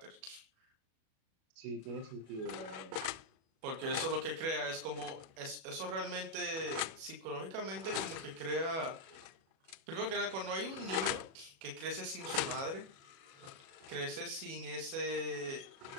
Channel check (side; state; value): left; late; 37 ms